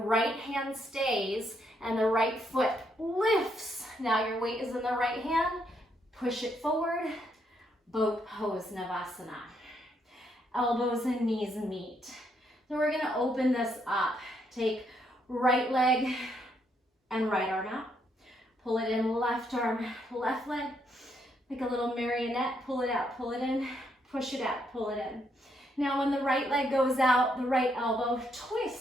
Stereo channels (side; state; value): both; normal; correlation 0.75